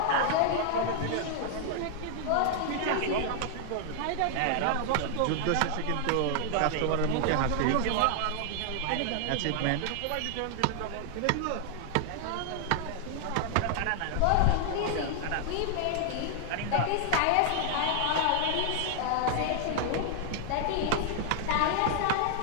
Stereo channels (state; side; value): different; both; correlation 0.00